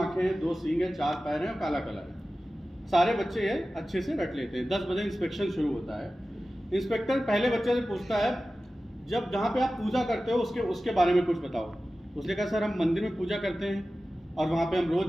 2 सींग हैं, 4 पैर हैं और काला कलर है। सारे बच्चे ये अच्छे से रट लेते हैं। 10 बजे इंस्पेक्शन शुरू होता है। इंस्पेक्टर पहले बच्चे से पूछता है, जब जहाँ पे आप पूजा करते हो उसके बारे में कुछ बताओ। उसने कहा सर हम मंदिर में पूजा करते हैं और वहाँ पे हम रोज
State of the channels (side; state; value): both; normal; correlation 0.95